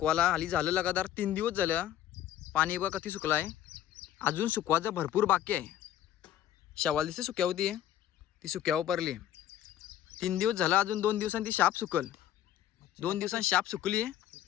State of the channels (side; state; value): right; quieter; 11.7 dB